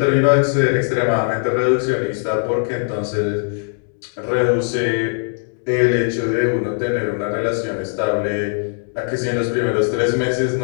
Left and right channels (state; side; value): silent; right; 63 dB below the other